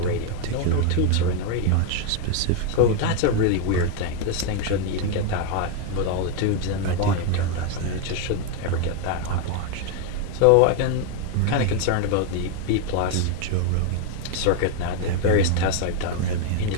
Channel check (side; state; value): both; different; correlation 0.01